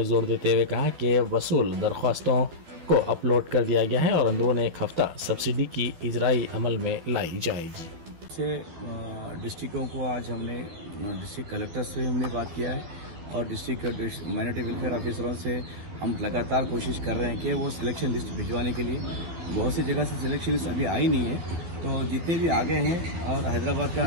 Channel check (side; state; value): left; late; 12 ms